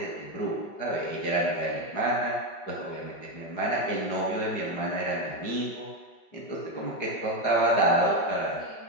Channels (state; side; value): late; right; 5.4 ms